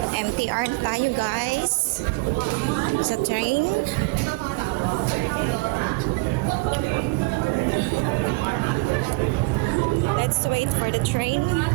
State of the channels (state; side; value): quieter; left; 25.7 dB